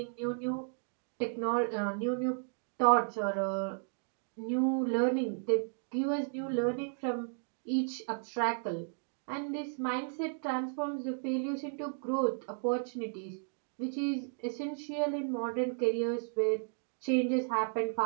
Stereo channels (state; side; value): silent; left; digital silence